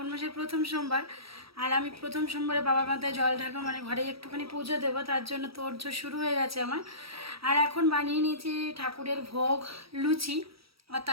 মাসের প্রথম সোমবার, আর আমি প্রথম সোমবারে বাবার মাথায় জল ঢালবো, মানে ঘরে একটুখানি পুজো দেবো, তার জন্য তোড়জোড় শুরু হয়ে গেছে আমার। আর এখন বানিয়ে নিয়েছি ঠাকুরের ভোগ লুচি, আর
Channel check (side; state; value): left; late; 0.76 ms